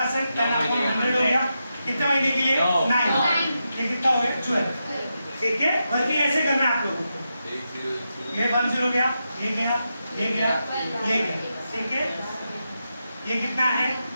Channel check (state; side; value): inverted; both; correlation -0.87